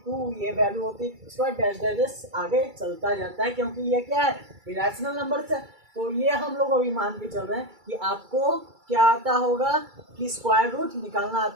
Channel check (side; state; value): left; late; 2.3 ms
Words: ये वैल्यू होती है। इसके बाद डैश डैश आगे चलता जाता है क्योंकि ये क्या है इरेशनल नंबर है। तो ये हम लोग अभी मान के चल रहे हैं कि आपको क्या आता होगा कि स्क्वायर रूट निकालना